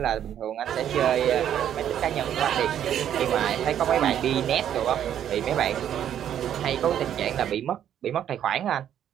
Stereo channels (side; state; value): left; quieter; 10.1 dB